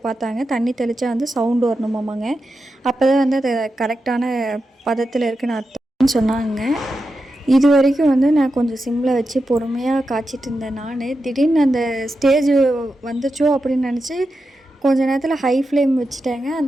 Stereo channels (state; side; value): normal; both; correlation 0.89